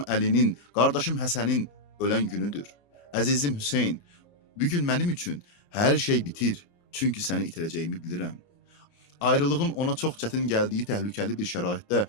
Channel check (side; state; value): right; late; 29 ms